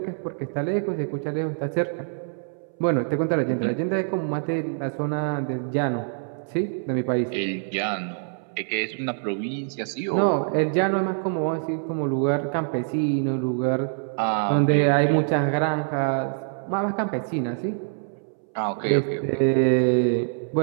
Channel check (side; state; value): left; silent; 61 dB below the other